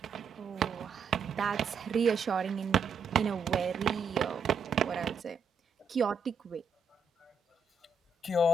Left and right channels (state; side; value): quieter; left; 4.3 dB